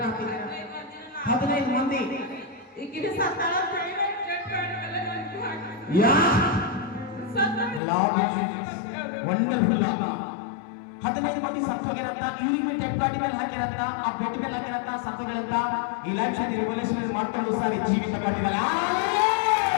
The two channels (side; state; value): right; drops out; at 7.8 s